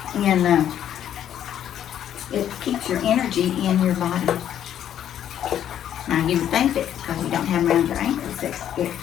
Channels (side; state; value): right; quieter; 10.4 dB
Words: And it keeps your energy in your body. Now you would think that because you don't have them around your ankles that it